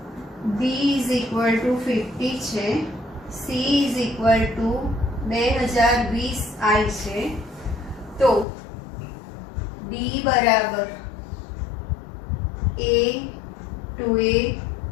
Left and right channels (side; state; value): right; drops out; at 8.5 s